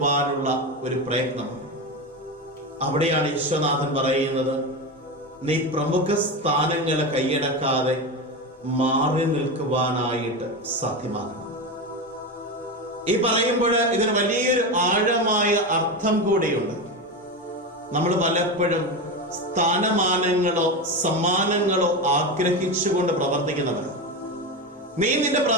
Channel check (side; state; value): both; normal; correlation 0.18